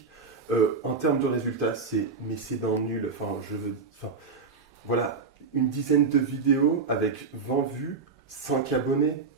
En termes de résultats, c'est dans le nul. Voilà, une dizaine de vidéos avec 20 vues, 5 abonnés,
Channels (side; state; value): left; quieter; 4.8 dB